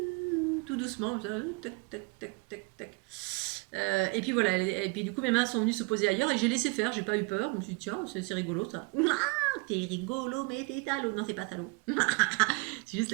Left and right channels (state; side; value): quieter; left; 29.6 dB